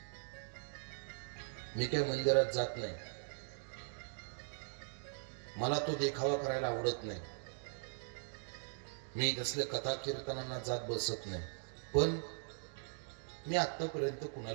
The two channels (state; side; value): silent; left; digital silence